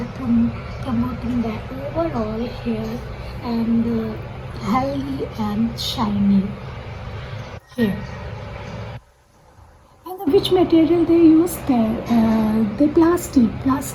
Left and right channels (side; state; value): both; identical; correlation 1.00